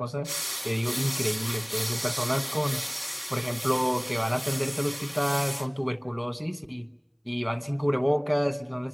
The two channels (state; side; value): identical; both; correlation 1.00